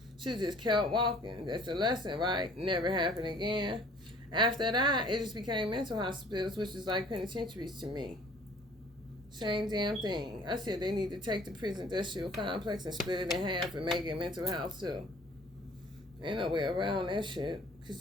She just kept walking. That's the lesson, right? Never happened again. After that, it just became mental hospitals, which is like penitentiaries to me. Same damn thing. I said they need to take the prison industrial complex and split it in half and make it mental health too. Ain't no way around that shit. Because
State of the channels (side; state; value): both; normal; correlation 0.53